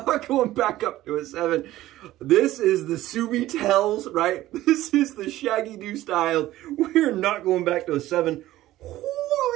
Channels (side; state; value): left; quieter; 15.4 dB